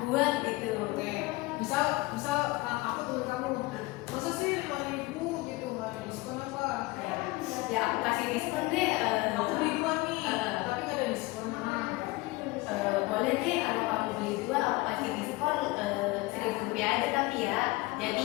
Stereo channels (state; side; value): quieter; right; 21.8 dB